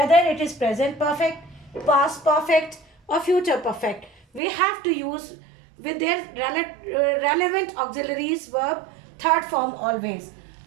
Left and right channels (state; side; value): drops out; left; at 4.4 s